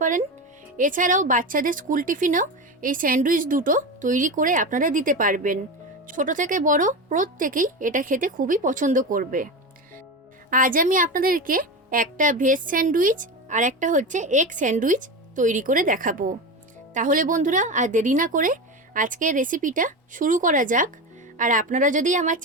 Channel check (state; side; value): normal; both; correlation 0.21